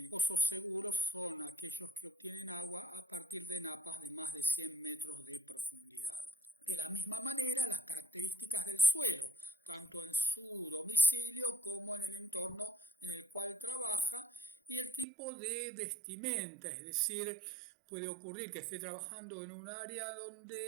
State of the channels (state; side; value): drops out; left; at 15.1 s